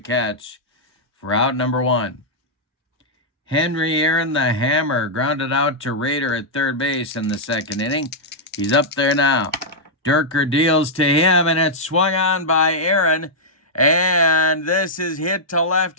for out number 1. Henry Aaron, the hammer, grounded out to Rader at third base in the second inning. He's up there now. Durker deals to him, and it's swung on by Aaron, and this is hit to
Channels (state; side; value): normal; both; correlation -0.07